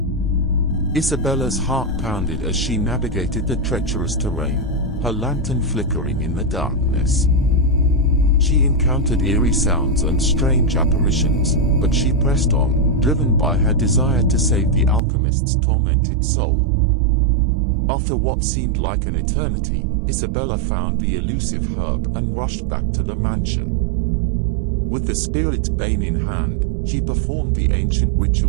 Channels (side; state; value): left; drops out; at 15.0 s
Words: Isabella's heart pounded as she navigated the treacherous terrain, her lantern flickering in the darkness. She encountered eerie sounds and strange apparitions, but she pressed on, driven by her desire to save the alchemist's tormented soul. After what seemed like an eternity, Isabella found the elusive herb and rushed back to the mansion. With the spirit's bane in hand, she performed the ancient